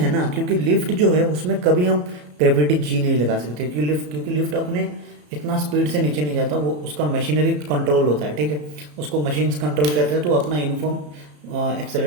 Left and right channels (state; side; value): late; left; 34 ms